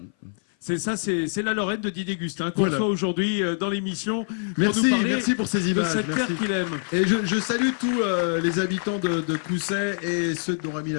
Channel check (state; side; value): silent; right; 57 dB below the other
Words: C'est la Lorraine de Didier Gustin qu'on reçoit aujourd'hui dans l'émission. Merci pour ces images. De cette terre qu'il aime. Et je salue tous les habitants de Coussay et ceux de Don